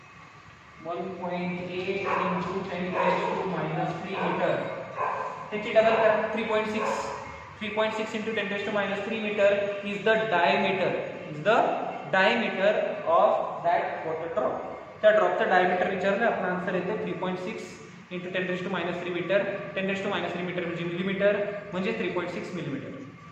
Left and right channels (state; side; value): identical; both; correlation 1.00